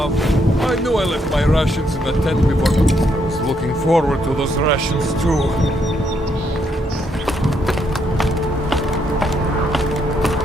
I knew I left my rations in the tent before. I was looking forward to those rations too.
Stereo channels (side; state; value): both; normal; correlation 0.75